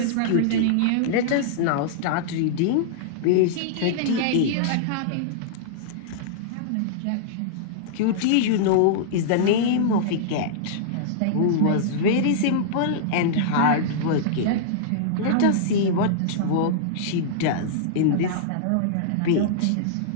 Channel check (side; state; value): both; different; correlation -0.02